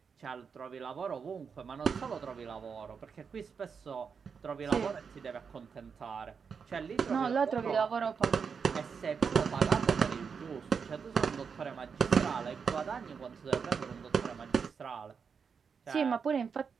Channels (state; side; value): quieter; left; 6.1 dB